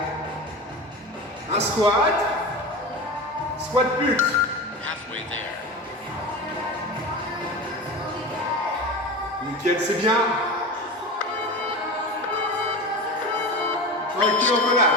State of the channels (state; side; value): normal; both; correlation 0.28